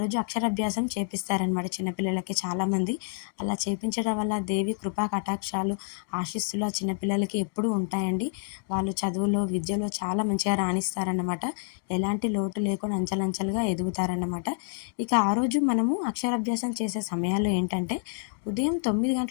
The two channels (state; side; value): silent; right; digital silence